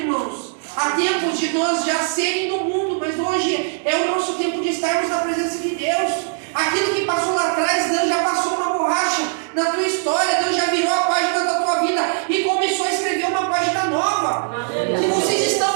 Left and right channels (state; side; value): silent; left; 65 dB below the other